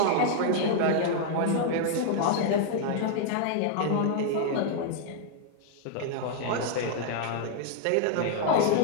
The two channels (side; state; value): both; different; correlation 0.00